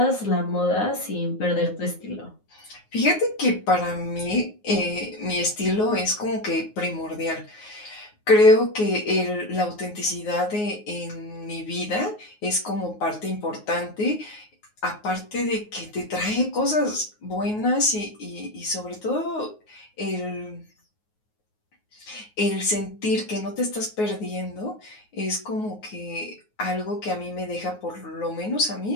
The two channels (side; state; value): right; late; 9.5 ms